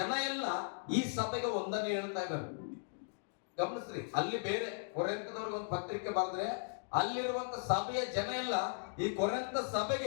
ಎಲ್ಲ ಈ ಸಭೆಗೆ ವಂದನೆ ಹೇಳ್ತಾ ಇದ್ದಾರೆ. ಗಮನಿಸ್ರಿ, ಅಲ್ಲಿ ಬೇರೆ ಕೊರಿಂಥದವ್ರಿಗೆ ಒಂದು ಪತ್ರಿಕೆ ಬರೆದ್ರೆ ಅಲ್ಲಿರುವಂತ ಸಭೆಯ ಜನ ಎಲ್ಲ ಈ ಕೊರಿಂಥ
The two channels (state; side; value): silent; right; digital silence